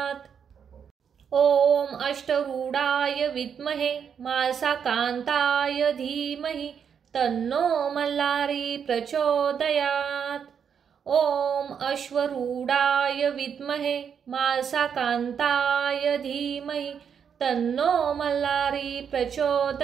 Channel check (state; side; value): quieter; left; 7.4 dB